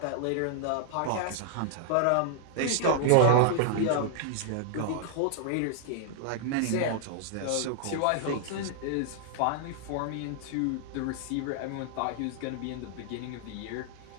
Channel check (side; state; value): both; different; correlation -0.01